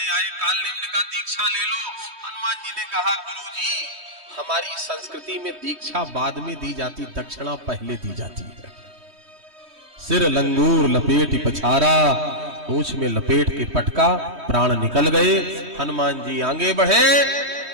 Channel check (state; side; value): late; left; 3.2 ms